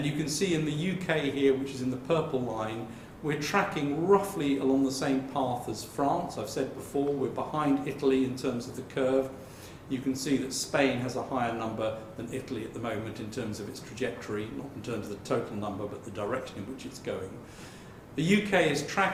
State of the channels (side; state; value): both; identical; correlation 1.00